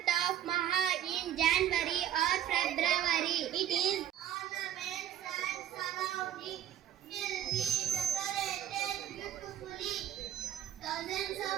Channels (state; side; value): quieter; left; 11.0 dB